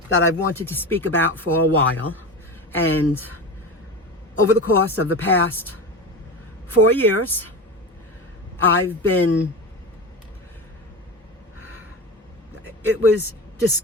that I've wanted to speak about for a while. And over the course of the past 4 years, it was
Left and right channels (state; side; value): normal; both; correlation 0.26